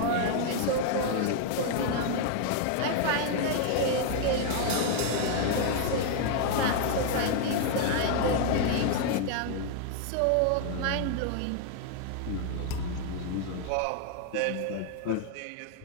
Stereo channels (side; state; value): both; different; correlation 0.00